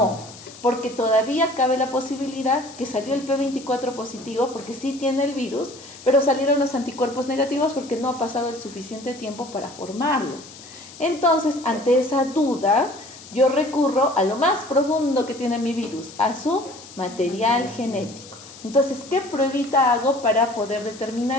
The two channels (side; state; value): left; noise; hiss, 18 dB below the sound